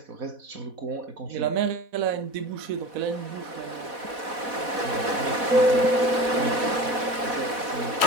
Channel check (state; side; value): late; left; 4.1 ms